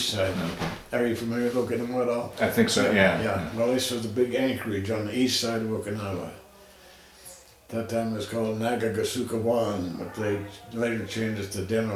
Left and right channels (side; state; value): both; identical; correlation 1.00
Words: Are you familiar with Okinawa at all? I think so, yeah. Well, this was the big anchorage on the east side of Okinawa. That time it was called Nagagasukawan, but they later changed it to